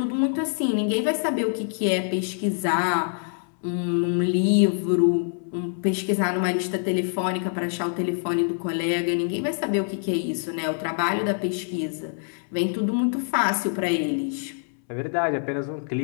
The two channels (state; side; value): silent; right; 62 dB below the other